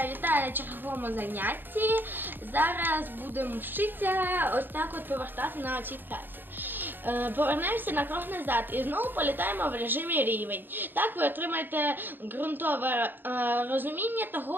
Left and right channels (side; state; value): left; late; 0.094 ms